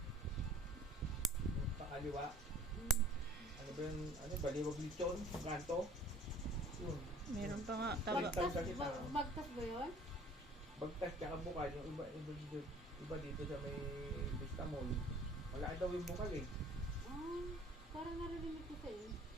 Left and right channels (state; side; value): normal; both; correlation 0.51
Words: Yung pakaliwa. Ano ba yung, ano, Baliwag Lechon, kanto. Yun. Meron pa nga. Taga, Bagtas ba yun? Bagtas tsaka Bukal, yung iba dito sa may Vista Mall. Wala daw yung Bukal eh. Ah, parang narinig ko sa'yo.